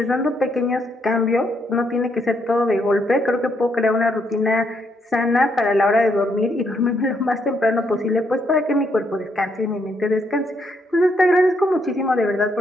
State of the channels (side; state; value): both; normal; correlation 0.75